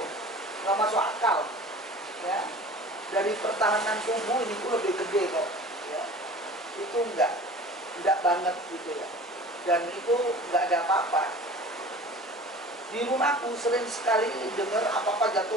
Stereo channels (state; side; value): normal; both; correlation 0.41